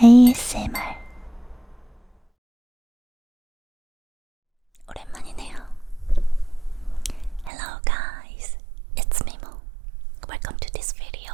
ASMR. 오랜만이네요. Hello guys, it's Mimo. Welcome to this video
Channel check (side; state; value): left; drops out; at 7.5 s